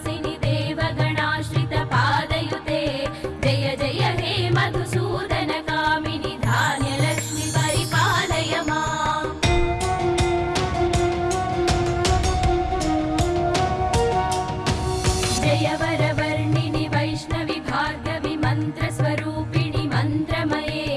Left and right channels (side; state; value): both; identical; correlation 1.00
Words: देवगणाश्रित पादयुते जय जय हे मधुसूदन कामिनि धान्यलक्ष्मि परिपालय माम्। जय वरवर्णिनि वैष्णवि भार्गवि मन्त्रस्वरूपिणि मन्त्रमये